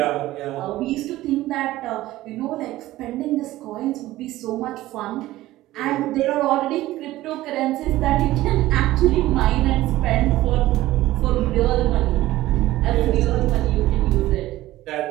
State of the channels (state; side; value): quieter; left; 16.2 dB